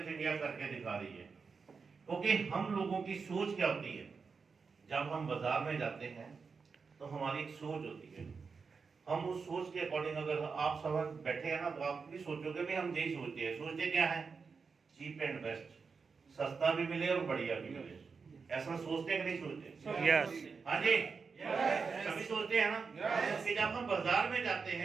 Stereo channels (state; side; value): quieter; left; 5.1 dB